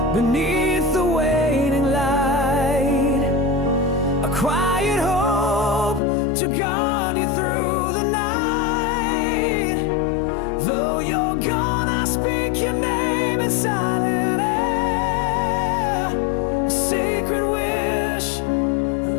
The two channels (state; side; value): drops out; right; at 6.0 s